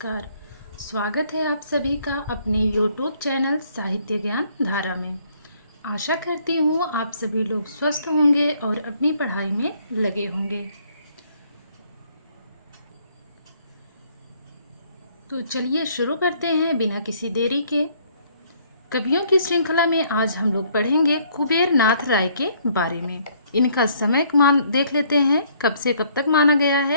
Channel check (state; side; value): inverted; both; correlation -0.64